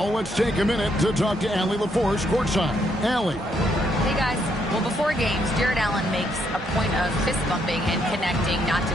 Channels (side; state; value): both; normal; correlation 0.74